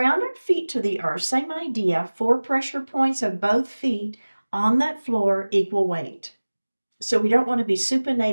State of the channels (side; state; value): both; inverted; correlation -1.00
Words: our feet to the earth. Same idea, 4 pressure points of both feet on that floor, equal weight. So we don't want to be